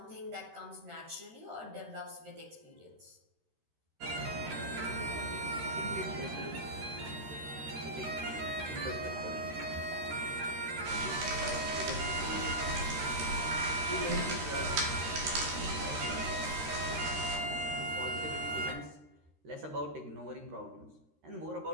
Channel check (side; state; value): left; late; 13 ms